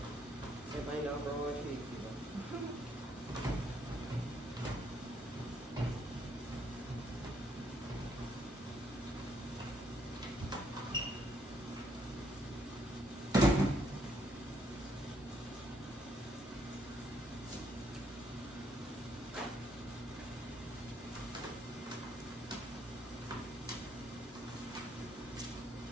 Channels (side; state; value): both; normal; correlation 0.71